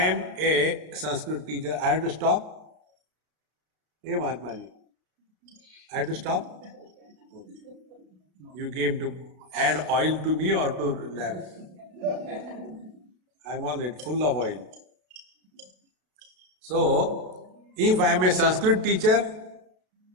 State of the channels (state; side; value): late; left; 32 ms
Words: a Sanskrit teacher, I have to stop? Hey Mahatma ji, I have to stop? Okay. You came to add oil to me or to lamp? I am already full of oil. So, if I am a Sanskrit teacher,